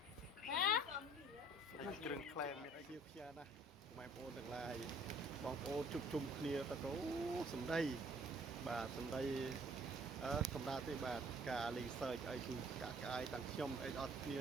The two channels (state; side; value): normal; both; correlation 0.56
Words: ហ៎ គ្រឿងក្លែមមានអីជាផ្ញើណាម៉ែបងប្អូនទាំងឡាយបងប្អូនជុំជុំគ្នាទៅអូសំដីបាទសំដីសម្រាប់ទេបាទការលេងសើចអីគឺកាក់កាយទាំងខ្ញុំអីអត់គ្នា